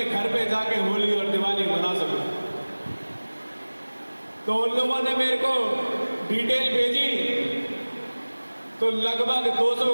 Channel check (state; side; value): inverted; both; correlation -1.00